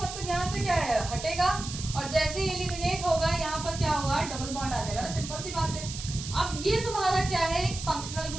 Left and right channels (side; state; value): right; noise; hiss, 9 dB below the sound